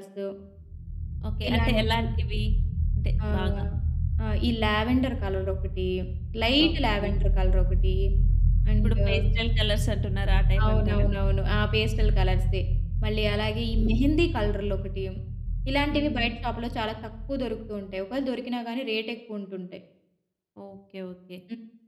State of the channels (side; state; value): both; identical; correlation 1.00